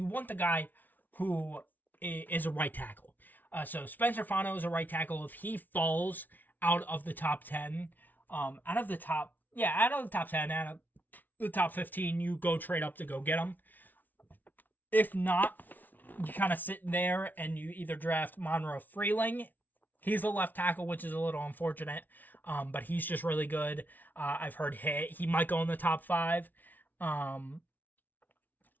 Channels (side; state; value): right; late; 0.083 ms